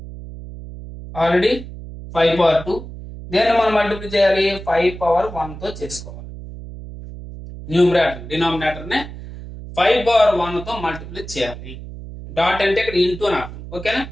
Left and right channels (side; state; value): right; noise; hum, 12 dB below the sound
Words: ఆల్రెడీ 5/2. దేన్ని మనం మల్టిప్లై చేయాలి? 5/1తో చేసుకోవాలి. డినామినేటర్నే 5/1తో మల్టిప్లై చేయాలి. డాట్ అంటే ఇక్కడ ఇంటూ అని అర్థం. ఓకేనా?